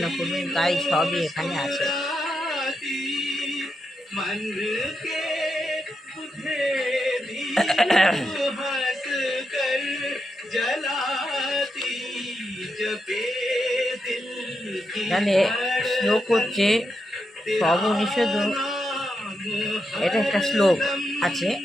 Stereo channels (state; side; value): normal; both; correlation 0.84